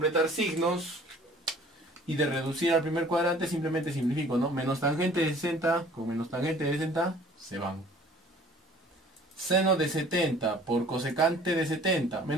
signos. Y de reducir al primer cuadrante simplemente simplifico, ¿no? Menos tangente de 60 con menos tangente de 60 se van. Seno de 70 por cosecante de 70.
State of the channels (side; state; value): both; normal; correlation 0.51